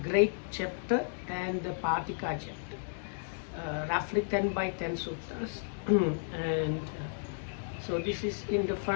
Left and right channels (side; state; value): right; silent; digital silence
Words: great chapter, and the Patika chapter. Roughly 10 by 10 suttas. And so this is in the